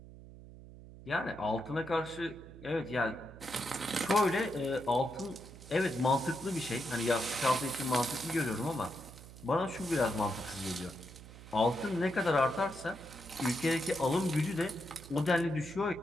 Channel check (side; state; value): right; noise; hum, 17 dB below the sound